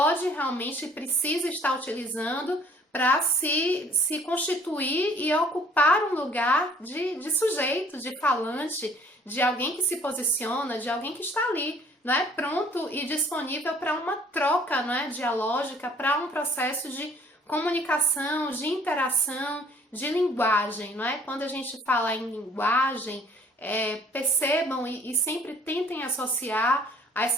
realmente e precisa estar utilizando para se constituir e ocupar um lugar de sujeito, de falante, de alguém que se posiciona, de alguém que está ali, né, pronto e disponível para uma troca, né, dialógica, para um processo de comunicação, de interação, de linguagem, não é? Quando a gente fala em linguagem, percebam e sempre tentem associar a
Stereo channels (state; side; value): normal; both; correlation 0.57